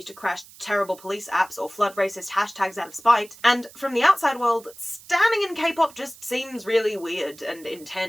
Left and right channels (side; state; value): right; noise; hiss, 21 dB below the sound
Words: to crash terrible police apps or flood racist hashtags out of spite. And from the outside world, standing in K-pop just seems really weird and